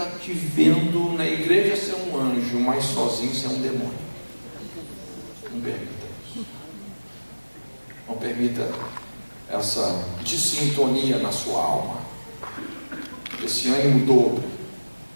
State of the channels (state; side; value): inverted; both; correlation -1.00